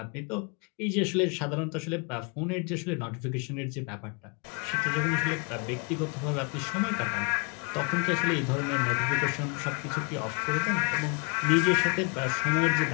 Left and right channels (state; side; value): quieter; right; 34.6 dB